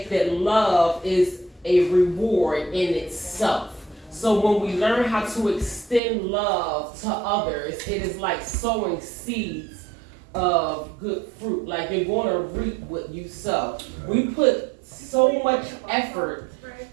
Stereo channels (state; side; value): drops out; left; at 6.0 s